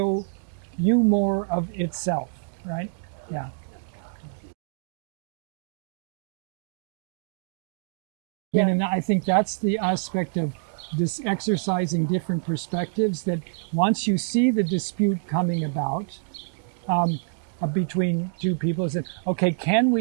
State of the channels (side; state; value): left; silent; digital silence